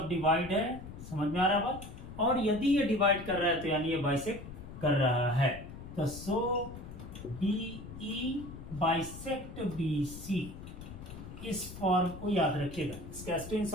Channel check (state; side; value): noise; left; rumble, 12 dB below the sound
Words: डिवाइड है, समझ में आ रहा है बात। और यदि ये डिवाइड कर रहा है तो यानी ये बाइसेक्ट कर रहा है। तो सो BE बाइसेक्ट BC, इस फॉर्म को याद रखिएगा, इसका